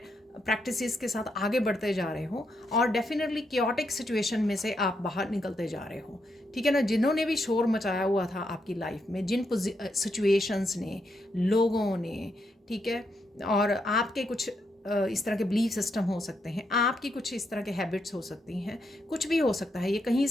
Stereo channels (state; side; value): normal; both; correlation 0.80